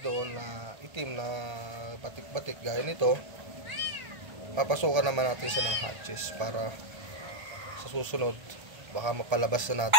na itim na batik-batik gaya nito, papasukan naman natin siya ng hatches para sa susunod baka mapalabas na natin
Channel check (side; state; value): left; late; 1.3 ms